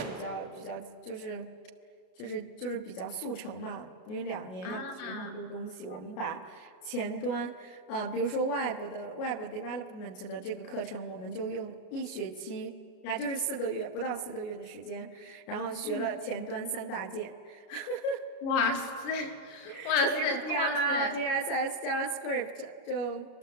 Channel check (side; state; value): right; late; 33 ms